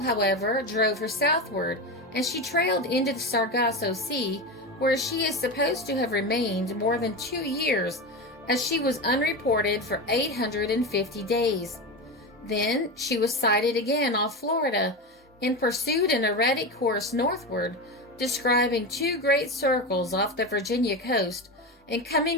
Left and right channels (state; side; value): normal; both; correlation 0.20